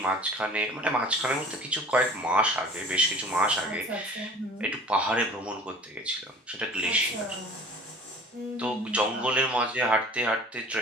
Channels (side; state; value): both; normal; correlation 0.46